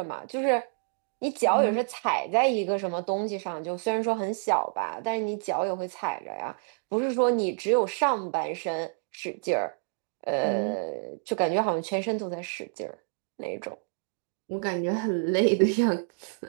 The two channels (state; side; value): silent; left; 59 dB below the other